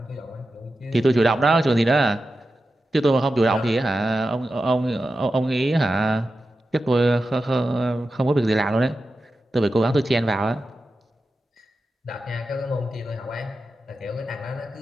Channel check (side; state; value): both; normal; correlation 0.92